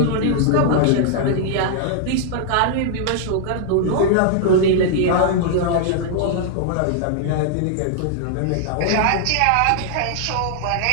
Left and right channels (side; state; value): both; different; correlation -0.01